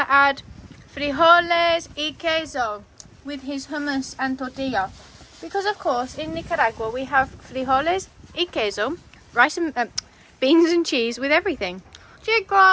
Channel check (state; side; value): identical; both; correlation 1.00